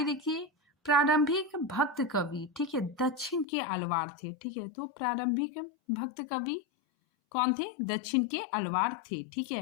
देखिए, प्रारंभिक भक्त कवि, ठीक है, दक्षिण के अलवार थे। ठीक है, तो प्रारंभिक भक्त कवि कौन थे, दक्षिण के अलवार थे। ठीक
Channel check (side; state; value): right; drops out; at 3.5 s